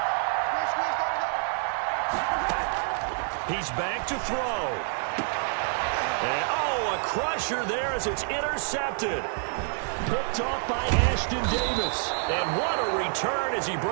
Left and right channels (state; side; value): silent; left; 58 dB below the other